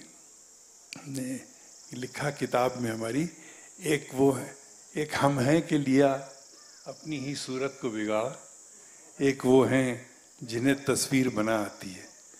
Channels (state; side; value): identical; both; correlation 1.00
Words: ने लिखा किताब में हमारी, एक वो है, एक हम हैं कि लिया अपनी ही सूरत को बिगाड़ा, एक वो हैं जिन्हें तस्वीर बना आती है।